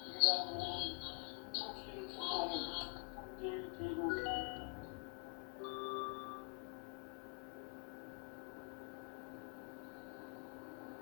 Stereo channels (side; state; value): right; quieter; 37.1 dB